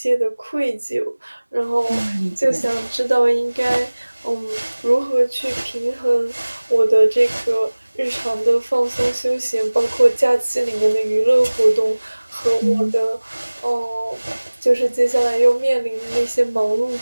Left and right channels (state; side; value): inverted; both; correlation -1.00